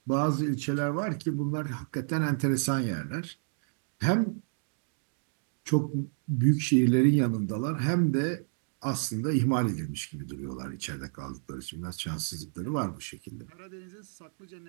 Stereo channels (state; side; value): silent; left; digital silence